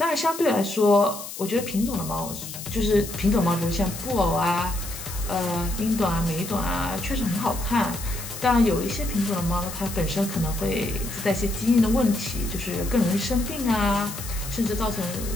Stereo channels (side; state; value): left; noise; hiss, 10 dB below the sound